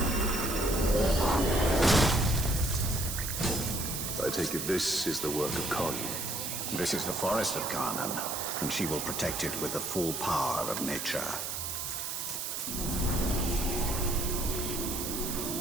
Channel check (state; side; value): noise; right; hiss, 4 dB below the sound